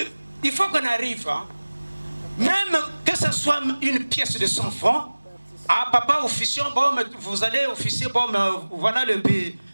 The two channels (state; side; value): inverted; both; correlation -1.00